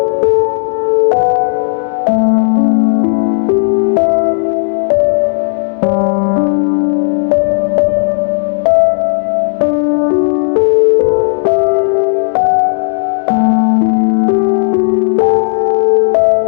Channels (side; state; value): right; silent; digital silence